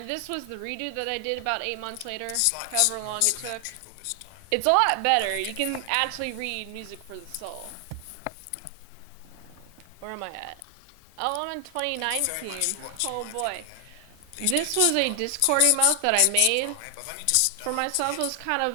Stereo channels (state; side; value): different; both; correlation 0.00